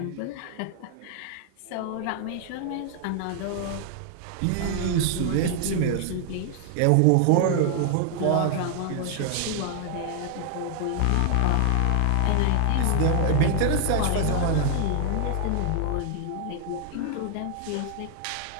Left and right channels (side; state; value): both; different; correlation 0.00